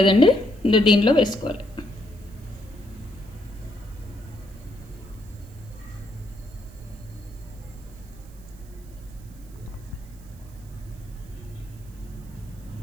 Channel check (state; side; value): noise; right; hiss, 26 dB below the sound